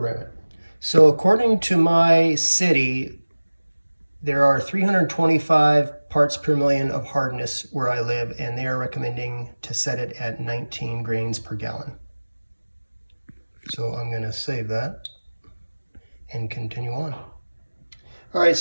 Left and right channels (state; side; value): inverted; both; correlation -1.00